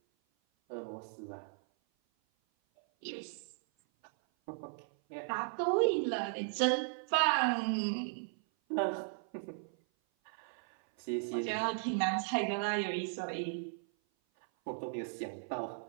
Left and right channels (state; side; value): silent; left; 54 dB below the other